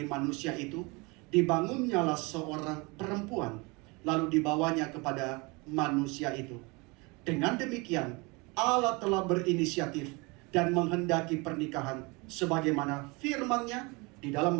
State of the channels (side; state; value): left; quieter; 27.2 dB